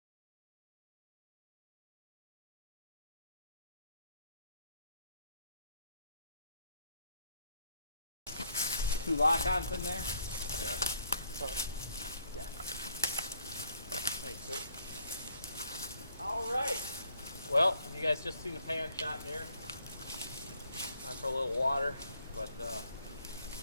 Two lock-ons in there. Yeah. Sorry. Yeah. Thanks, sir. All right. Well, you guys just seen the pan shot there. Time for a little water, but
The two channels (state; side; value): inverted; both; correlation -0.67